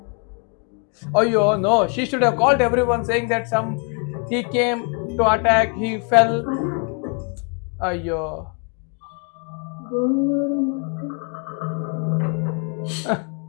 Ayyo, no. She should have called everyone saying that he came to attack, he fell. Ayyo.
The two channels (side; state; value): right; quieter; 38.6 dB